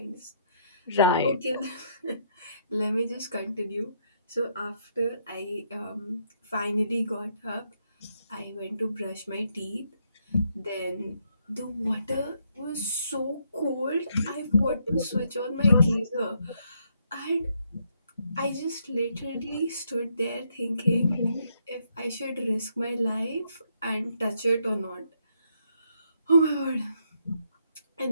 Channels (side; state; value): both; inverted; correlation -0.74